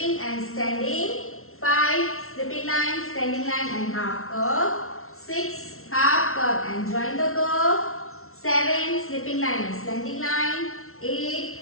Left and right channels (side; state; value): right; late; 0.62 ms